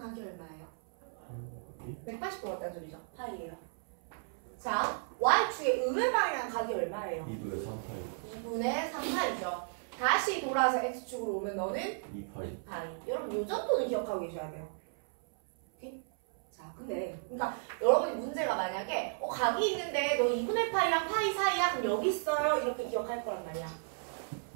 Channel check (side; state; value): left; silent; 55 dB below the other